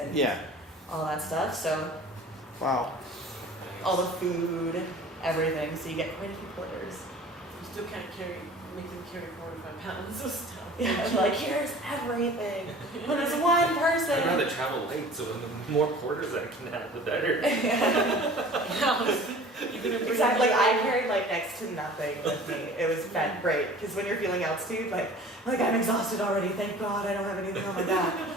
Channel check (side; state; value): both; normal; correlation 0.44